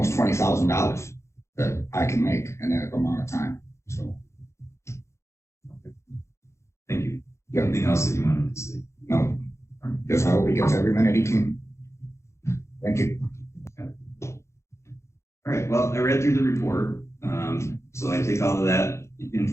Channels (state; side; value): late; right; 0.14 ms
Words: $20,000 that I can make in that amount of time. So. Okay. Thank you. Anything else that you wanted to say? No. Just I hope he gets every minute he can. Thank you. All right. Well, I read through the report. So I take all of that